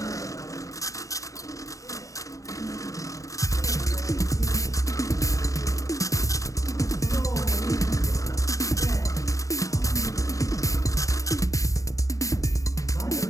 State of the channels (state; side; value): late; right; 0.16 ms